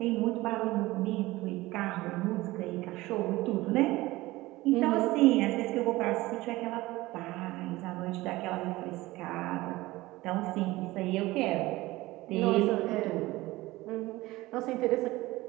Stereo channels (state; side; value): quieter; left; 19.1 dB